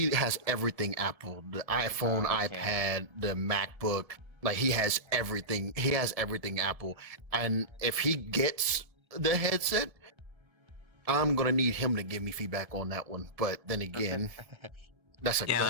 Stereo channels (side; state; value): left; late; 1.7 ms